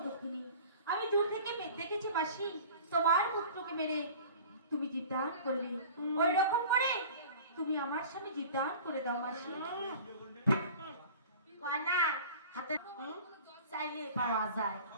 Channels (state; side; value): inverted; both; correlation -0.42